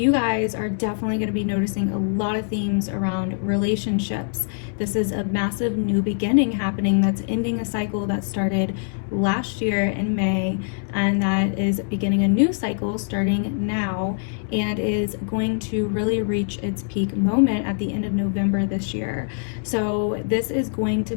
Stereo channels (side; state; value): right; silent; digital silence